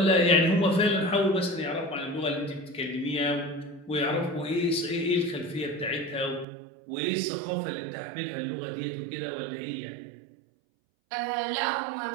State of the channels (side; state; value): left; drops out; at 6.5 s